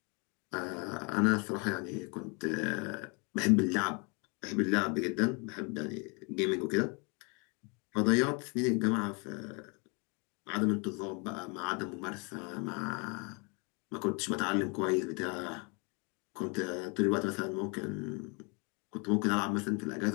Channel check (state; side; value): quieter; right; 32.7 dB